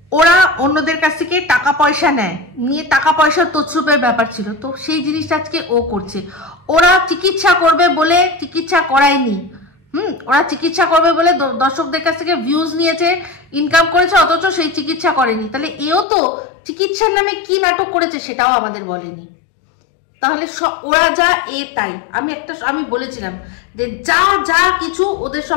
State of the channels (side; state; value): right; drops out; at 16.1 s